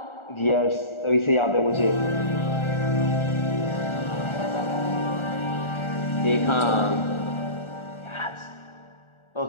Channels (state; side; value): late; right; 1.4 ms